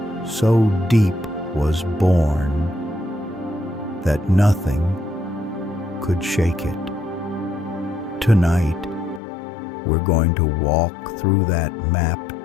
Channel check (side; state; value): right; drops out; at 9.2 s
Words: so deep was born that nothing could shake it. Tonight, we're going to walk through that map